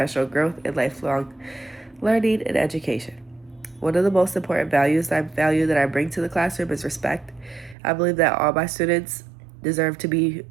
growth and lifelong learning and education. One of the most important value that I bring to the classroom is respect. I believe that all my students deserve to be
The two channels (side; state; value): left; drops out; at 7.8 s